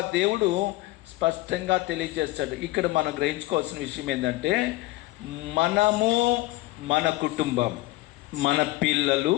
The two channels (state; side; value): quieter; right; 19.0 dB